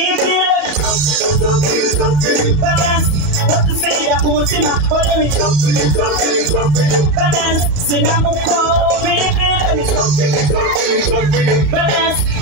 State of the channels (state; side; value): late; left; 35 ms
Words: Baby, balance. What to say that umutima? Follow me. Balance. Sinamuko, baby. Balance.